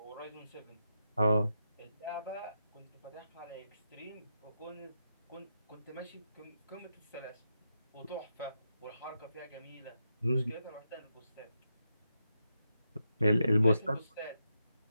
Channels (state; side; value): inverted; both; correlation -0.85